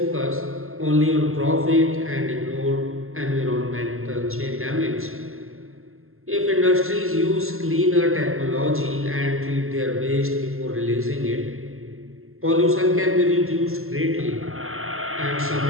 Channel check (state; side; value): late; left; 0.62 ms